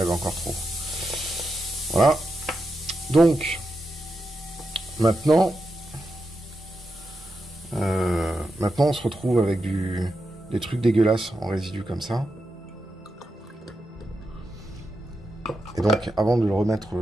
avait encore trop. Voilà. Donc, maintenant, on se retrouve avec des trucs dégueulasses en résidus comme ça. Et donc, avant de le remettre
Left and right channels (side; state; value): both; normal; correlation 0.87